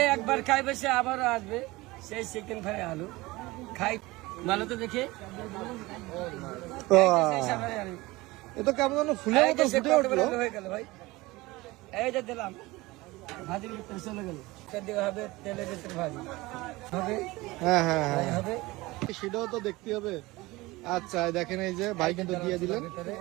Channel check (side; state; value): left; quieter; 21.0 dB